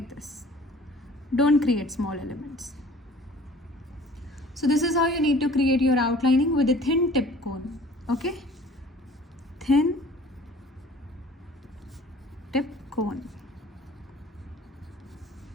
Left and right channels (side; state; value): both; normal; correlation 0.49